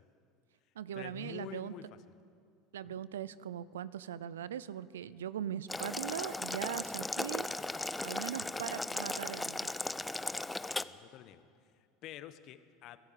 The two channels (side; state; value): both; normal; correlation 0.40